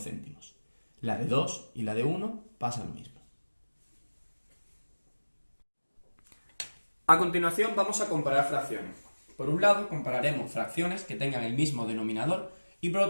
La de 2 y la de 1 pasa lo mismo. A continuación vamos a comparar fracciones. Por un lado compararemos fracciones que tengan el mismo denominador y por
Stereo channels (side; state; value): both; inverted; correlation -1.00